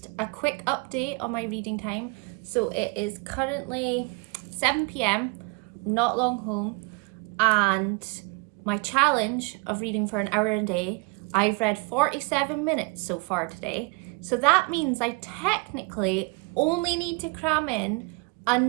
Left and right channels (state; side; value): quieter; left; 28.8 dB